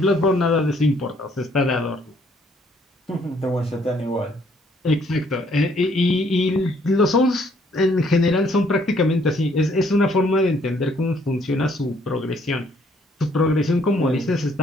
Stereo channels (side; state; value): both; normal; correlation 0.65